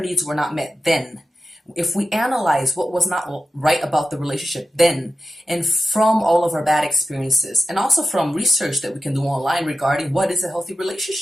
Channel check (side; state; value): both; normal; correlation 0.92